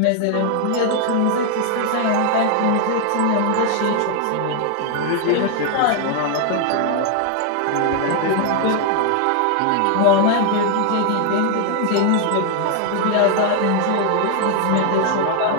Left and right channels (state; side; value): different; both; correlation 0.00